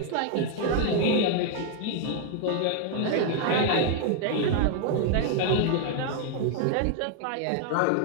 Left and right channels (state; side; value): different; both; correlation 0.00